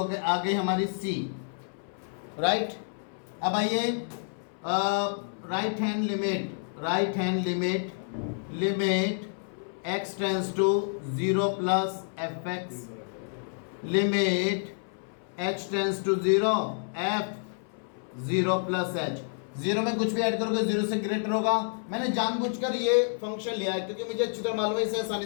गई आ गई हमारी c, राइट। अब आइए right hand limit x tends to 0 plus fx, limit h tends to 0 f 0 plus h। 0 में कुछ भी ऐड करोगे 0 से ग्रेटर होगा। मैंने जानबूझकर ये फंक्शन लिया है क्योंकि मुझे अच्छी तरह मालूम है इसे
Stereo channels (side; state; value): right; silent; 59 dB below the other